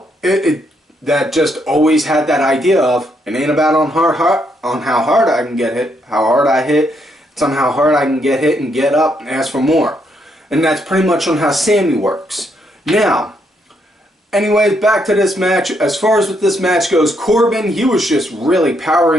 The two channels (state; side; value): normal; both; correlation 0.75